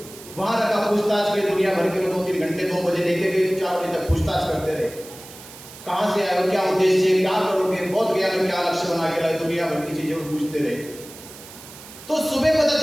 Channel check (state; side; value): noise; right; hiss, 17 dB below the sound